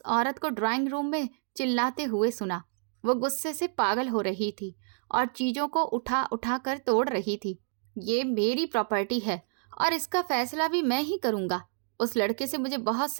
औरत को ड्राइंग रूम में चिल्लाते हुए सुना। वो गुस्से से पागल हो रही थी और चीजों को उठा उठा कर तोड़ रही थी। ये मेरी प्रॉपर्टी है और इसका फैसला भी मैं ही करूंगा। उस लड़के से मुझे बहुत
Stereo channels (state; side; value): silent; left; digital silence